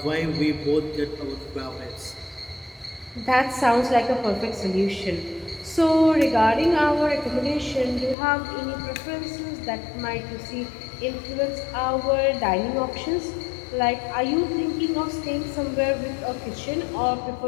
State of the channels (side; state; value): right; drops out; at 8.2 s